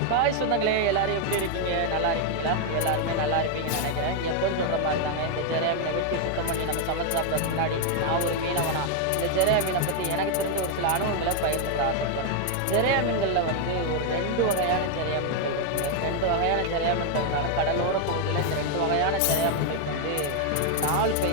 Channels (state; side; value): different; both; correlation 0.01